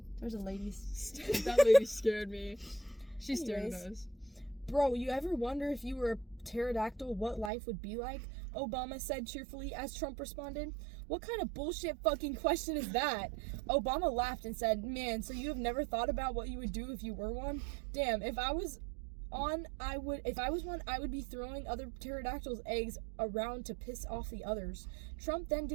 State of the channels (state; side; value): drops out; left; at 7.5 s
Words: There's a lady. That lady scared me. She stared at Anyways. us. Bro, you ever wonder if you were a pterodactyl what life would be like? Obama said cheerfully as Trump responded. What kind of bullshit fucking question is that? Obama laughed and said, "Man, so you have never thought about what you would do if you were one? Damn, if I was one, I would be throwing other pterodactyls' eggs around to piss off the others." Trump then